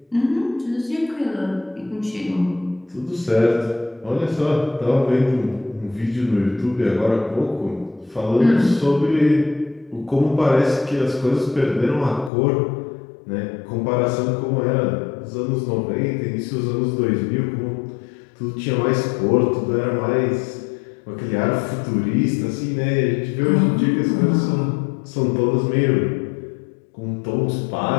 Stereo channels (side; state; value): right; drops out; at 12.3 s